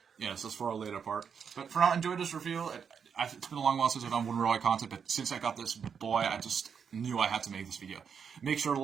Yes, that's for a later part. But for now, enjoy this review. It's been a long while since I've done wooden railway content, but since I got this boy, I just knew I had to make this video. Make sure to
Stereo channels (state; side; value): quieter; left; 6.8 dB